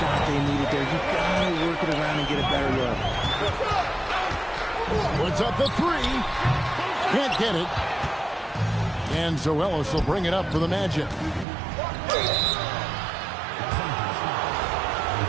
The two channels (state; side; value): drops out; left; at 11.5 s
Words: they needed there. You got to work it around and get a better look. Puts up the 3. Can't get it. And so Ellis will bring it up for the Magic.